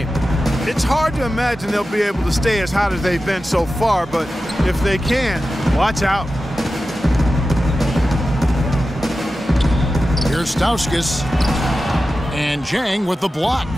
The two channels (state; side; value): normal; both; correlation 0.93